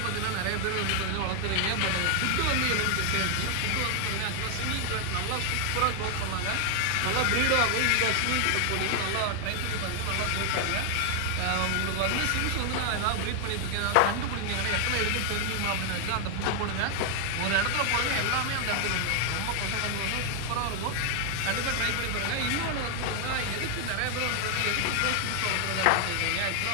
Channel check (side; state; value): both; different; correlation 0.00